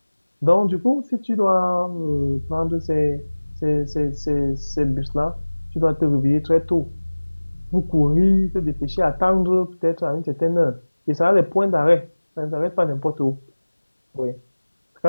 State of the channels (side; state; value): both; inverted; correlation -1.00